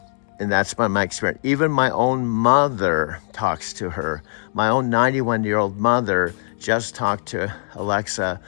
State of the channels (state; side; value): silent; right; digital silence